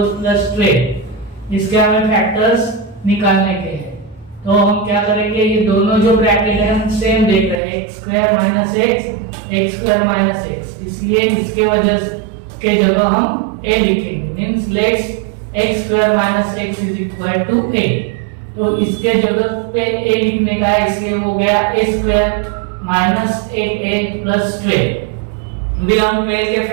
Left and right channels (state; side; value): drops out; left; at 7.6 s